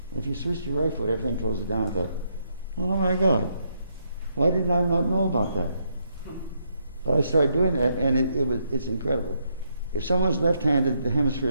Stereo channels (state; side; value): inverted; both; correlation -0.76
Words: And if you switch to your right foot, everything closes down. I thought, oh my God, why did I not know about that? But I started doing that, and it's incredible. If someone's left-handed, the hemisphere